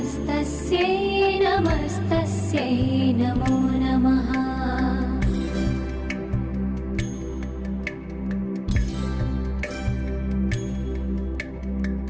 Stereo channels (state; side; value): identical; both; correlation 1.00